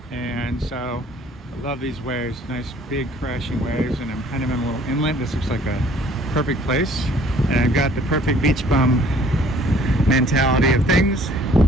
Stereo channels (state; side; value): normal; both; correlation 0.57